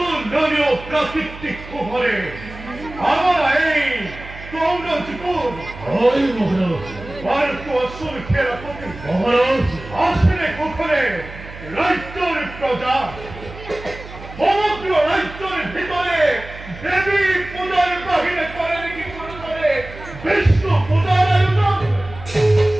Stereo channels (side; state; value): right; noise; hum, 15 dB below the sound